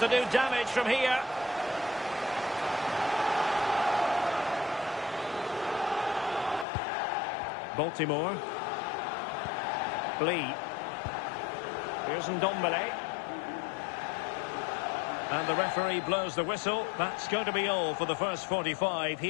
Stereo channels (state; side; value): drops out; right; at 6.7 s